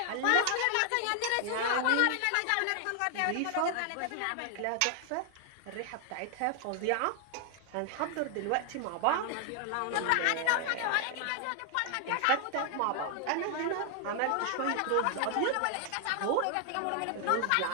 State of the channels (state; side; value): different; both; correlation 0.00